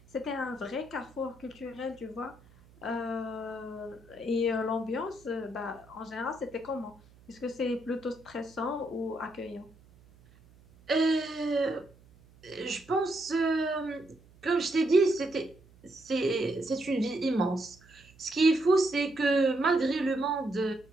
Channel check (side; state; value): right; noise; hum, 26 dB below the sound